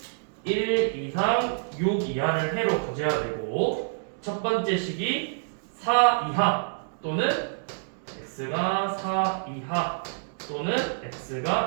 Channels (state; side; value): silent; left; digital silence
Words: 1 이상 6 이하를 해로 가져야 되고 첫 번째 식이 4 이하 또는 x가 4 이하 또는